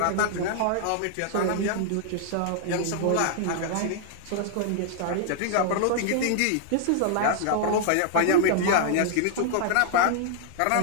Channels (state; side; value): different; both; correlation -0.01